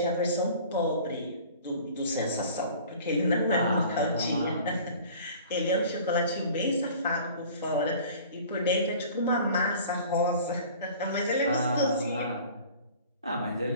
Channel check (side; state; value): both; inverted; correlation -0.46